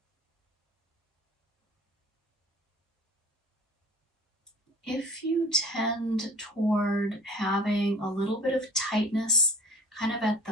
If you tend toward having a little bit of tightness kind of at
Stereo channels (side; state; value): both; normal; correlation 0.44